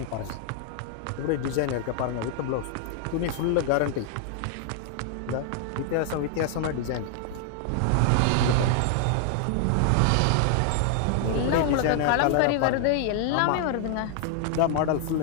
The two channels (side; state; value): both; different; correlation 0.00